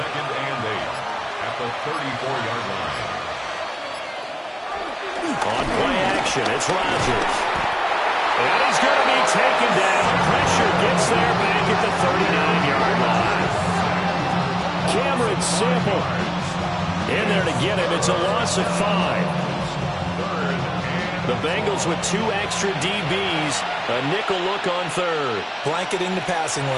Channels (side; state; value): both; identical; correlation 1.00